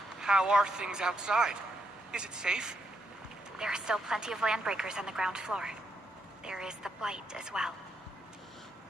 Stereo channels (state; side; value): normal; both; correlation 0.79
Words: how are things outside? Is it safe? There are still plenty of landbreakers on the ground floor. There is the Blight as well.